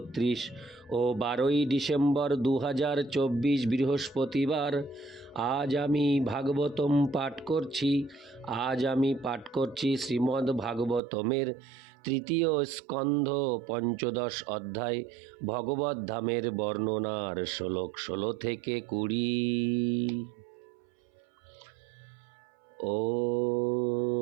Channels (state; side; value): drops out; left; at 11.0 s